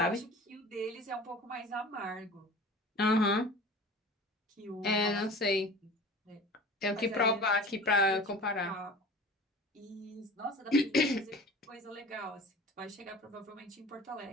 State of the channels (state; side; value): normal; both; correlation 0.40